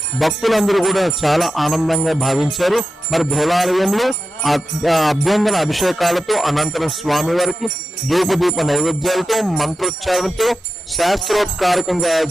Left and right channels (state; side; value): normal; both; correlation 0.91